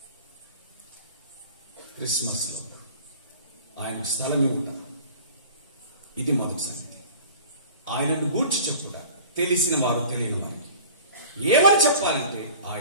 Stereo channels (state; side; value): inverted; both; correlation -0.44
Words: క్రిస్మస్ లో ఆయన స్థలం ఇవ్వట ఇది మొదటి సంగతి. ఆయనను గూర్చి చెప్పుట, తెలిసిన వారు తెలియని వారికి ఏమని చెప్పాలంటే